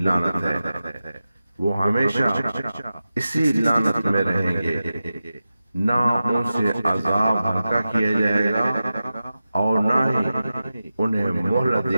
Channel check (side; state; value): both; inverted; correlation -0.93